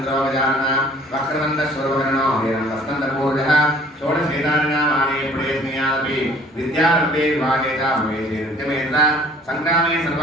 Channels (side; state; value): both; normal; correlation 0.53